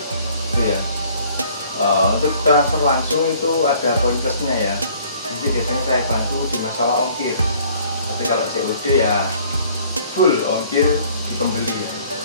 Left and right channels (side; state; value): both; inverted; correlation -0.57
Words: ya. Untuk transfer langsung itu ada poin plusnya ya, jadi biasanya saya bantu di masalah ongkir, tapi kalau COD ya full ongkir di pembeli ya,